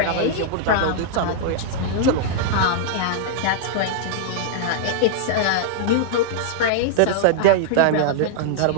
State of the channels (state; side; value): different; both; correlation -0.01